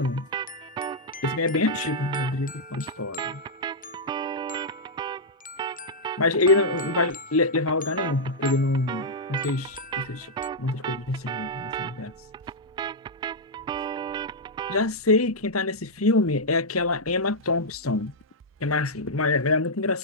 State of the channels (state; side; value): normal; both; correlation -0.06